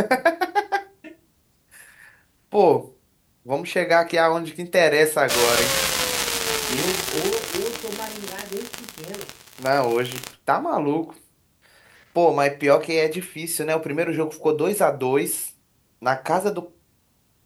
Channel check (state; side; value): identical; both; correlation 1.00